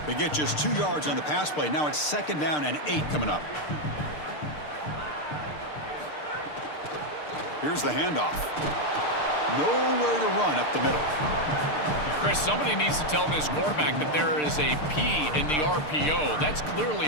They get just 2 yards on the pass play. Now it's 2nd down and 8 coming up. Here's the handoff. Nowhere to run up the middle. Chris, somebody needs to tell this quarterback that there is a P in the RPO. That's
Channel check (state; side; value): late; right; 6.6 ms